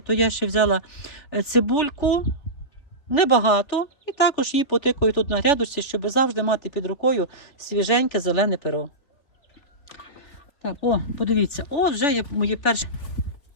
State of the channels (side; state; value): right; late; 3.4 ms